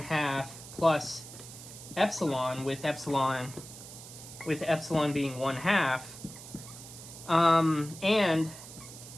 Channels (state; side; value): noise; right; hiss, 15 dB below the sound